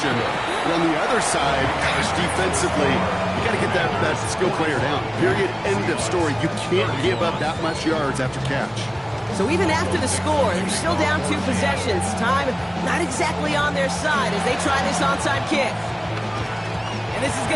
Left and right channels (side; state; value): both; identical; correlation 1.00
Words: But on the other side, gosh, defensively, you got to get that skill player down. Period. End of story. You can't give up that much yards after catch. So even after the score, they're still down 2 possessions. Time not exactly on their side as they try this onside kick. And this is